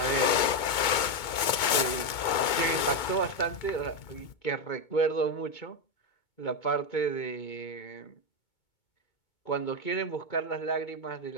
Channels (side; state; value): right; late; 2.2 ms